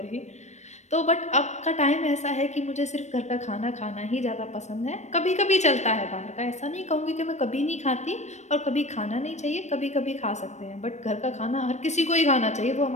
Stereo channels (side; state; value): right; late; 0.34 ms